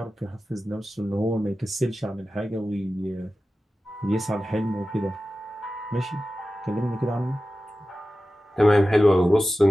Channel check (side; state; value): both; normal; correlation 0.94